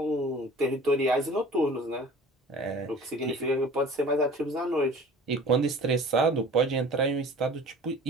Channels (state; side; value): normal; both; correlation 0.44